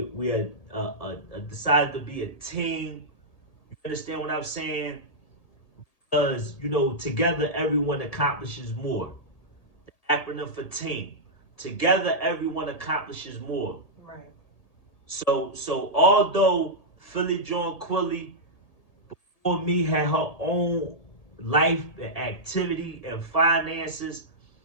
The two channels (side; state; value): right; late; 1.8 ms